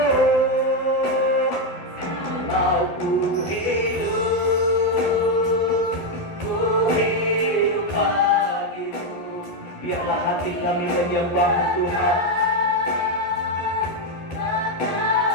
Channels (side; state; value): right; late; 12 ms